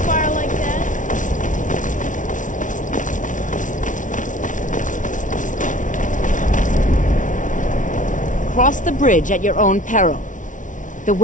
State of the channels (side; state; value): right; late; 0.37 ms